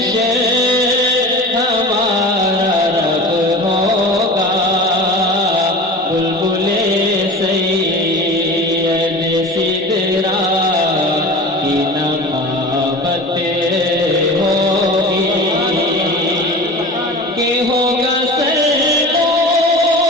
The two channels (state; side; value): normal; both; correlation 0.35